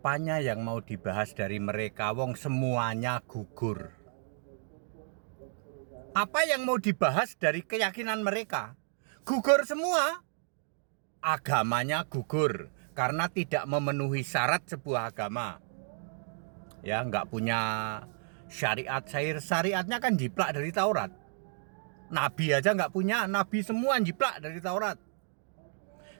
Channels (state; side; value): silent; left; digital silence